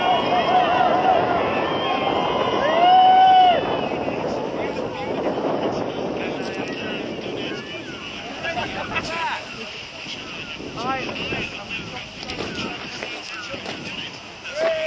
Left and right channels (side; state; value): both; identical; correlation 1.00